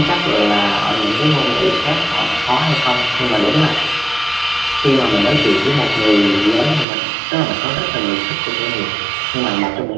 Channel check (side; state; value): left; drops out; at 6.9 s